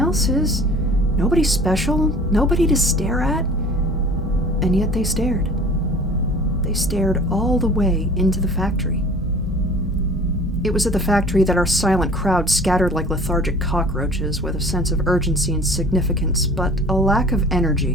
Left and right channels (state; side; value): normal; both; correlation 0.46